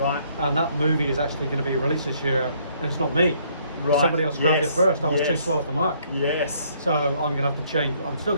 and that movie is actually going to be released this year, and it's not me. Right. Somebody else grabbed Yes. it first. I was too Yes. slow off the mark. Yes. So I'm going to have to change. I'm still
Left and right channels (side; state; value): both; inverted; correlation -0.66